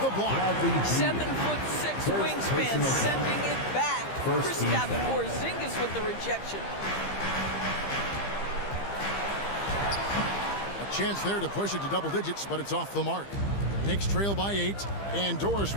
the block. 7'6" wingspan, sending it back. Kristaps Porzingis with the rejection. A chance there to push it to double digits, but it's off the mark. Knicks trail by 8, and Doris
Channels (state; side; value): late; right; 15 ms